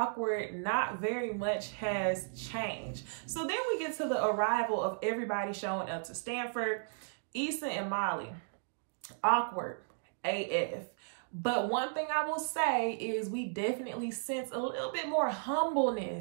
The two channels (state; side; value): silent; left; digital silence